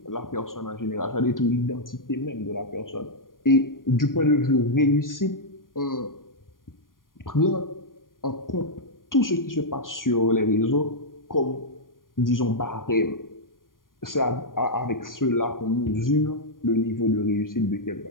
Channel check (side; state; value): right; late; 0.90 ms